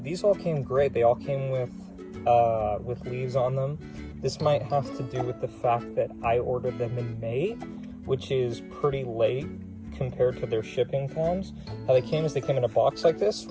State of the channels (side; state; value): both; identical; correlation 1.00